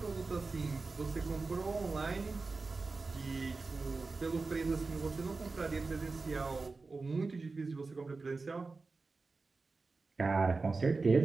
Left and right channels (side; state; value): left; quieter; 3.9 dB